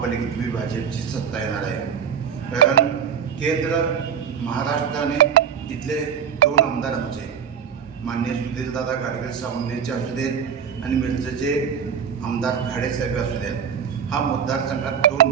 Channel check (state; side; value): quieter; left; 7.6 dB